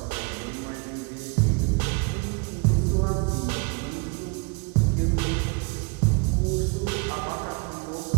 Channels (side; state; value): left; quieter; 31.1 dB